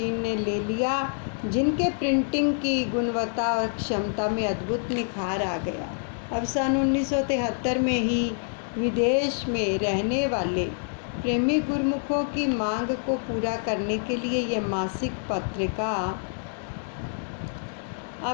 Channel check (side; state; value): right; silent; 60 dB below the other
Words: ने ले लिया, जिनके प्रिंटिंग की गुणवत्ता और क्षमता में अद्भुत निखार आ गया। अब सन 1973 में ही विदेश में रहने वाले प्रेमी गुरुमुखों की मांग को पूरा करने के लिए यह मासिक पत्रिका